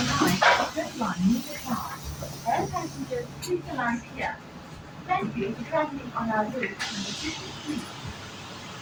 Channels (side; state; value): both; identical; correlation 1.00